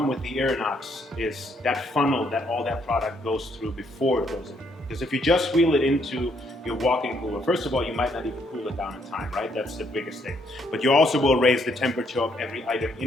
with the Irinox is that funnel that all that product goes through before it goes in. Because if you just wheel it into your walk-in cooler, first of all, you might not even cool it down in time, right? That's the biggest thing. But you also will raise the temperature of every item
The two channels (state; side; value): normal; both; correlation 0.71